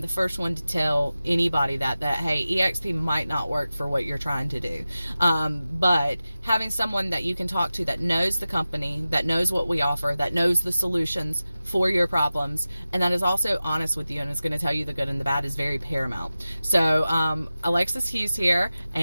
first one to tell anybody that hey, EXP might not work for what you're trying to do. But having someone that you can talk to that knows the company, that knows what we offer, that knows the solutions for your problems, and that is also honest with you and is going to tell you the good and the bad is very paramount. So Alexis Hughes here,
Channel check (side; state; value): both; inverted; correlation -0.95